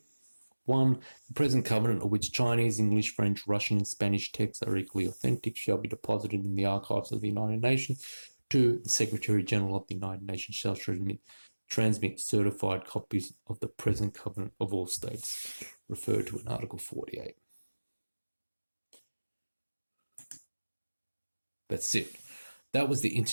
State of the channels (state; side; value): inverted; both; correlation -1.00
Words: 1. The present covenant, of which Chinese, English, French, Russian, and Spanish texts are equally authentic, shall be deposited in the archives of the United Nations. 2. The Secretary General of the United Nations shall transmit certified copies of the present covenant of all states, referred to in Article 48. That's it. That was the